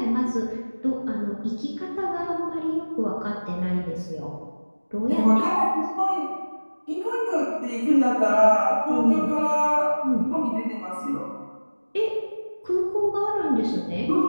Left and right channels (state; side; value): inverted; both; correlation -1.00